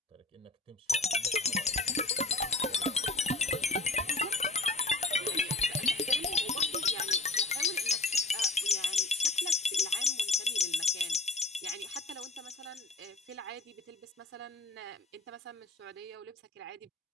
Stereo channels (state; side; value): quieter; right; 3.2 dB